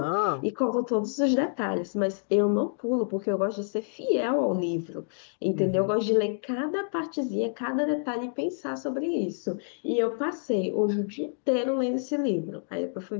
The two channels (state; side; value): silent; right; digital silence